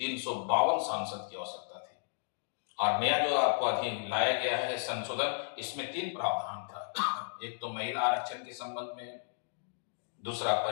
सांसद की आवश्यकता थी। और नया जो आपको अधीन लाया गया है संशोधन, इसमें 3 प्रावधान था। एक तो महिला आरक्षण के संबंध में, दूसरा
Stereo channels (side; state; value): right; silent; digital silence